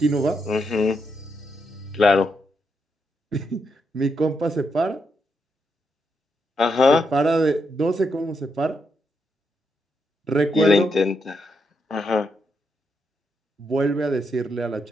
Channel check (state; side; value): normal; both; correlation 0.81